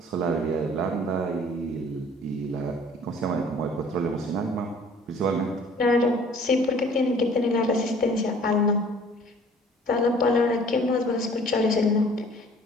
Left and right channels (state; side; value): normal; both; correlation 0.52